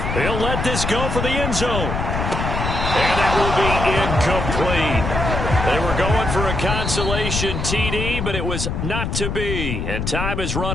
He'll let this go for the end zone. And that will be incomplete. They were going for a consolation TD, but it was not to be. And time has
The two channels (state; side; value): noise; left; rumble, 2 dB below the sound